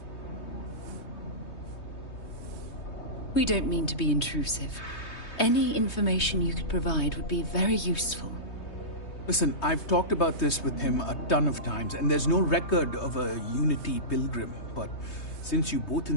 We don't mean to be intrusive. Any information you could provide would be very useful. Listen, I've talked about this with him a ton of times, and there's no record of a Unity pilgrim, but since you both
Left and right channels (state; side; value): late; right; 3.2 ms